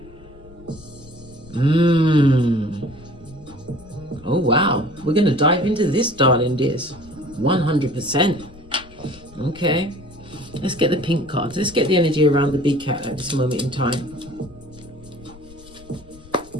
Oh wow, we're going to dive into this, darling dears. 100%. Okay, let's get the pink cards. Let's get the energy around the big cat at this moment in time.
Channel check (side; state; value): left; noise; rumble, 21 dB below the sound